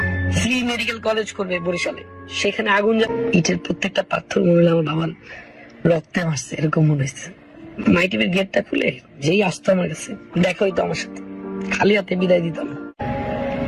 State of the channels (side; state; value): both; identical; correlation 1.00